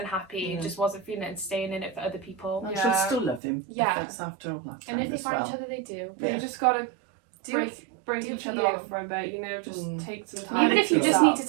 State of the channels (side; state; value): left; drops out; at 3.4 s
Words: Yeah. just wasn't feeling it and staying in it for other people. and Yeah. she'll still love him. Yeah. If it's after all that time And if they as find well. each other, they do. But Yeah. you just got to Do break do each for other you. off for a bit, you know, just Mm. take some And time. Even I if you think just so. need to